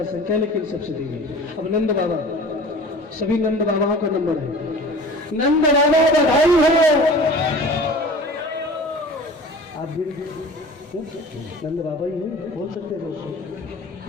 संख्या लेकिन सबसे धीमे। अब नंद बाबा, सभी नंद बाबाओं का नंबर है। नंद बाबा बधाई हो। आप भी नंद बाबा ही हैं, बोल सकते हो।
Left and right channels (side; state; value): both; normal; correlation 0.41